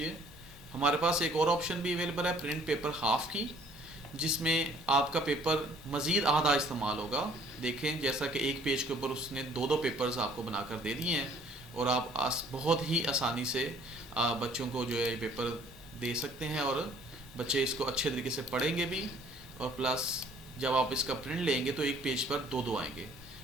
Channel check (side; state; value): both; normal; correlation 0.57